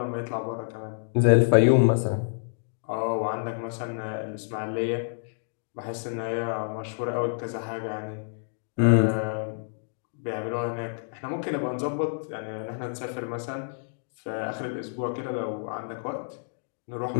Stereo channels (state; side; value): silent; right; digital silence